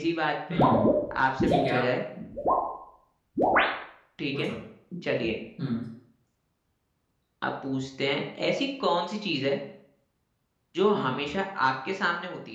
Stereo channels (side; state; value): both; identical; correlation 1.00